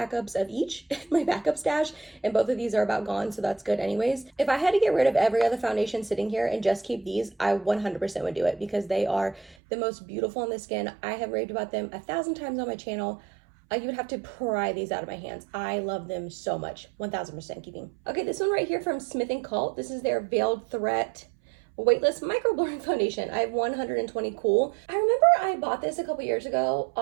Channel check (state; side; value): drops out; left; at 9.6 s